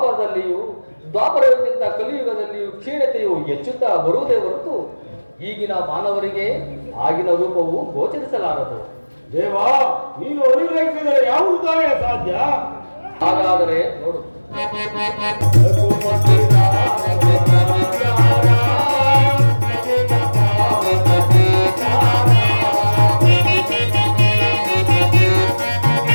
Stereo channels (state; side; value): inverted; both; correlation -1.00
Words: ದ್ವಾಪರಕ್ಕಿಂತ ಕಲಿಯುಗದಲ್ಲಿಯೂ ಕ್ಷೀಣತೆಯು ಹೆಚ್ಚುತ್ತಾ ಬರುವುದೇ ಹೊರತು ಈಗಿನ ಮಾನವರಿಗೆ ಆಗಿನ ರೂಪವು ಗೋಚರಿಸಲಾರದು. ದೇವ, ನೀನು ಅನುಗ್ರಹಿಸಿದರೆ ಯಾವುದು ತಾನೇ ಸಾಧ್ಯ? ಹಾಗಾದರೆ ನೋಡು.